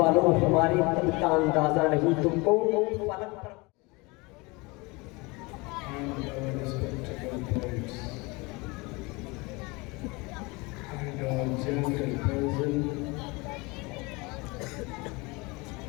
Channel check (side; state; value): right; quieter; 25.8 dB